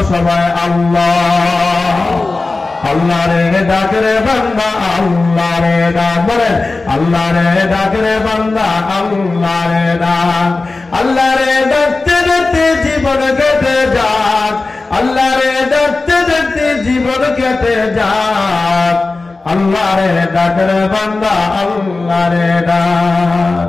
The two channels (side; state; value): right; quieter; 3.5 dB